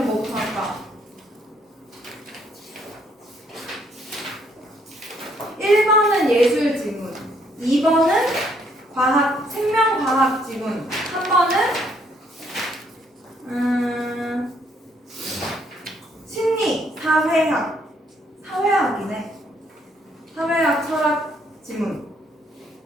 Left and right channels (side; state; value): both; normal; correlation 0.69